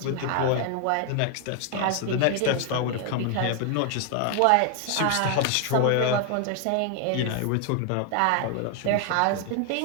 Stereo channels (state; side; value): different; both; correlation 0.00